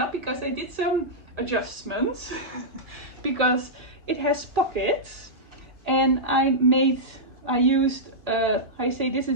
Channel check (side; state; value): left; late; 2.0 ms